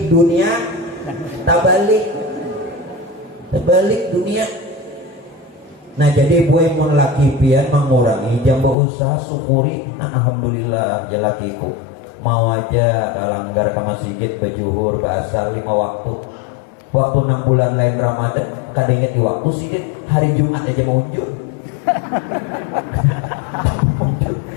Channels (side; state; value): right; drops out; at 8.8 s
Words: dunia terbalik dunia. Nah jadi buat mon laki pian mengurangi jam berusaha syukuri. Alhamdulillah jalakiku mau aja langgar ke masjid berjuhur bahasa 5 waktu. Waktu 6 bulan lain Ramadan kada ingat di waktu sidin hari Jumat aja mau unjuk.